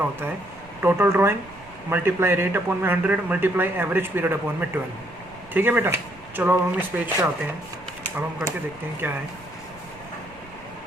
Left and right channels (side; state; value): right; noise; rumble, 22 dB below the sound